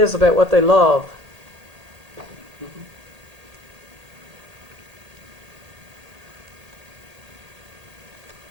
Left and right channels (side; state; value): left; late; 1.8 ms